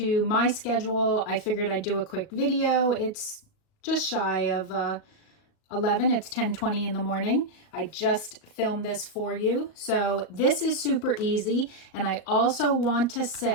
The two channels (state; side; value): late; right; 37 ms